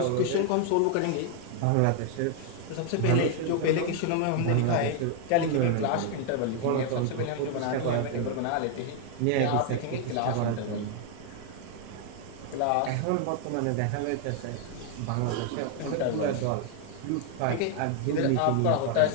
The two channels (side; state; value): both; different; correlation 0.00